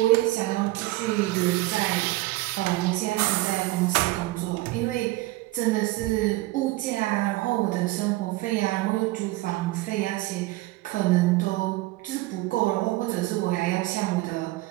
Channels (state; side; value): quieter; left; 19.3 dB